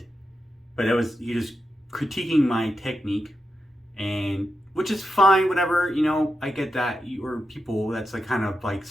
but it was, you just critiquing my technique, and which is fine, whatever, I get that. Or people, that's like kind of like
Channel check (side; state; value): both; normal; correlation 0.87